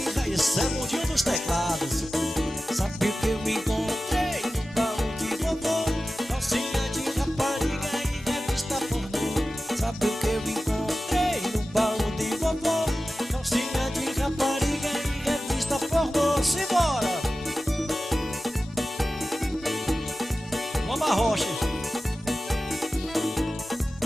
raiz, esse é o mundinho dos teclados. Sabe o que eu encontrei no baú de vovô? Calcinha de rapariga e revista pornô. Sabe o que eu encontrei no baú de vovô? Calcinha de rapariga e revista pornô. Simbora! Vamos a rocha.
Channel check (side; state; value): both; normal; correlation 0.95